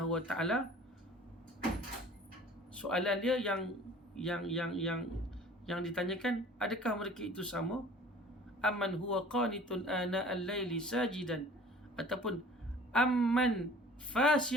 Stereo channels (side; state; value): both; normal; correlation 0.47